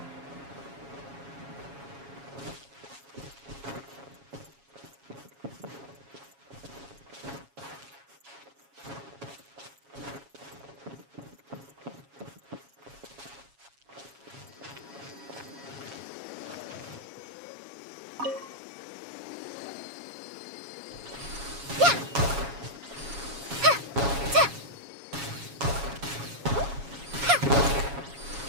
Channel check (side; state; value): left; late; 7.2 ms